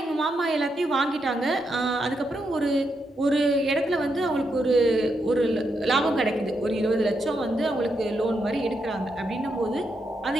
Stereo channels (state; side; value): normal; both; correlation 0.82